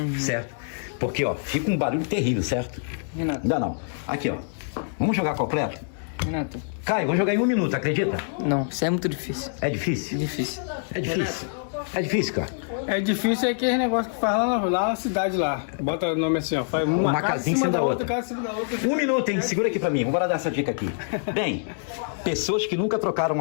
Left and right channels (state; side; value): silent; right; digital silence